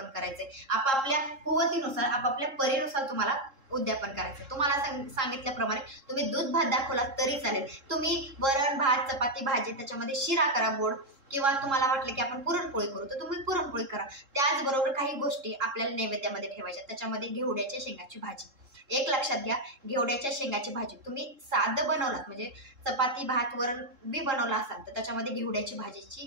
करायचंय. आपापल्या कुवतीनुसार, आपापल्या परीनुसार तुम्हाला उद्यापन करायचं. तुम्हाला सांगितल्याप्रमाणे तुम्ही दूध भात दाखवला तरी चालेल. तुम्ही वरण भात चपाती भाजी त्याच्यामध्ये शिरा करा गोड, किंवा तुम्हाला वाटलं की आपण पुरणपोळी करू तर तुम्ही पुरणपोळी करा. त्याचबरोबर काही गोष्टी आपल्याला नैवेद्यामध्ये ठेवायच्या. त्याच्यामध्ये घेवड्याच्या शेंगाची भाजी. एक लक्षात घ्या, घेवड्याच्या शेंगाची भाजी तुम्ही साधं बनवलात म्हणजे चपाती भात वरण बी बनवला असाल तर त्याच्यामध्ये घेवड्याची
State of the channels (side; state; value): left; late; 3.7 ms